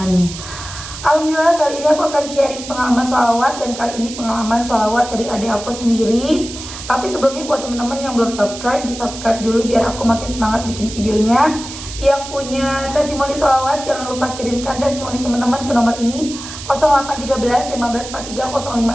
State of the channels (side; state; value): right; noise; hiss, 11 dB below the sound